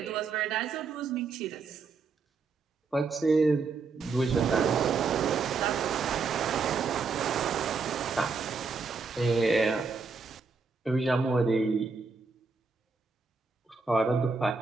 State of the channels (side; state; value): left; quieter; 4.6 dB